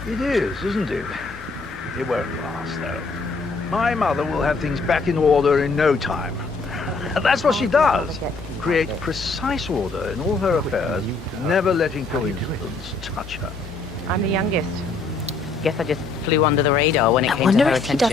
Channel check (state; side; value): quieter; right; 4.0 dB